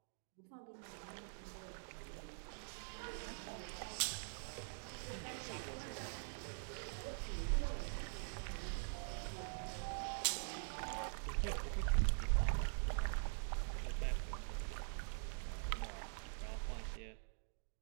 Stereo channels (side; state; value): left; silent; digital silence